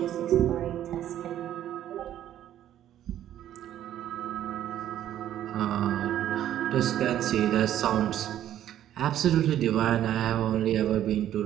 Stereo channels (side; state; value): left; quieter; 11.6 dB